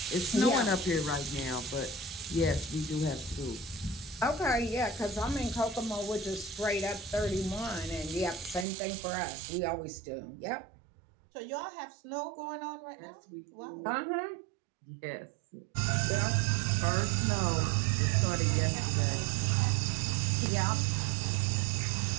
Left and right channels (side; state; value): left; drops out; at 8.7 s